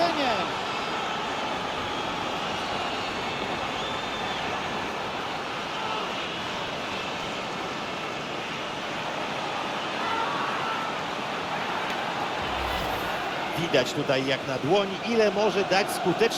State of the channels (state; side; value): identical; both; correlation 1.00